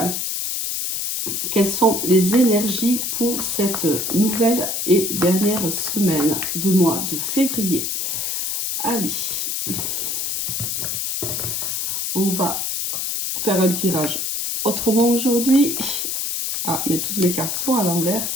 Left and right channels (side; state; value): left; noise; hiss, 1 dB below the sound